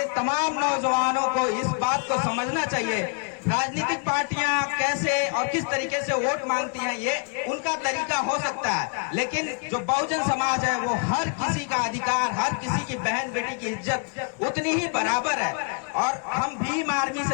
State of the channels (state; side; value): quieter; right; 38.3 dB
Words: तमाम नौजवानों को इस बात को समझना चाहिए। राजनीतिक पार्टियां कैसे और किस तरीके से वोट मांगती हैं, ये उनका तरीका हो सकता है, लेकिन जो बहुजन समाज है वो हर किसी का अधिकार, हर किसी की बहन बेटी की इज्जत उतनी ही बराबर है। और हम भीम आर्मी